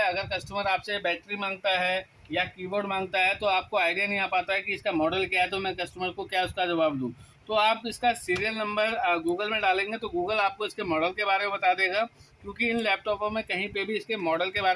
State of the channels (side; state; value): both; identical; correlation 1.00